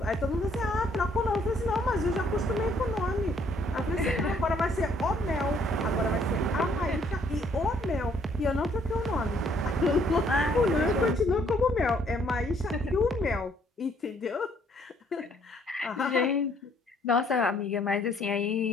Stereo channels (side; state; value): both; normal; correlation 0.65